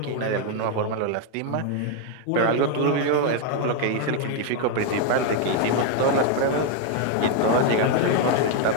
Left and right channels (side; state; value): both; different; correlation 0.01